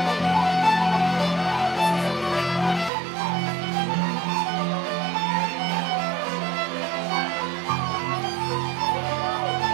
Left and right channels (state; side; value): drops out; left; at 2.9 s